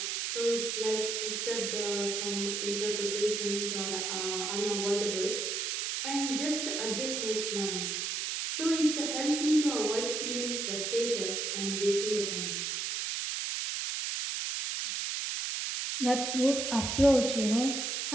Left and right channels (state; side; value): noise; right; hiss, 1 dB below the sound